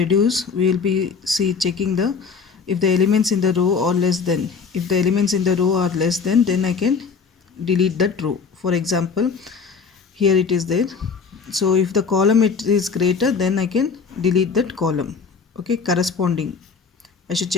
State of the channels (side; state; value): right; quieter; 5.5 dB